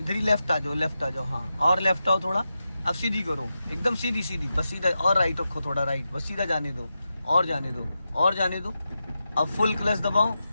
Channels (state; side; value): inverted; both; correlation -0.90